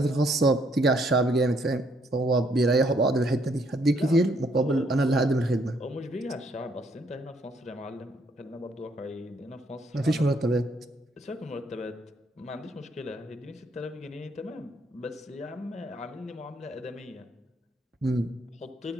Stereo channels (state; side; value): normal; both; correlation 0.69